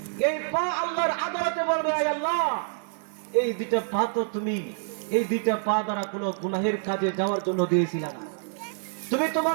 এই পা আল্লাহর আদালতে বলবে, আয় আল্লাহ, এই 2টা পা তো তুমি এই 2টা পা দ্বারা কোনো গুনাহের কাজে যাওয়ার জন্য দিয়েছিলে না। তুমি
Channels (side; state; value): left; silent; 60 dB below the other